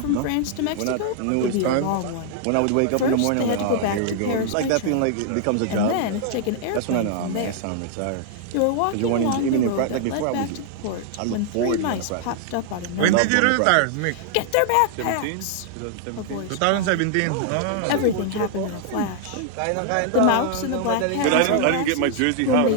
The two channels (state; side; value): different; both; correlation 0.00